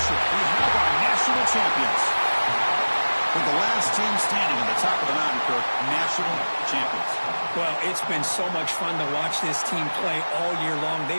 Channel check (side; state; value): both; inverted; correlation -1.00